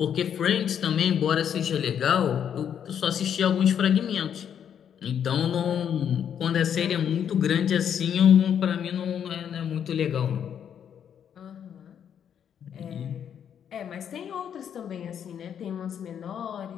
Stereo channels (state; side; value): quieter; right; 8.7 dB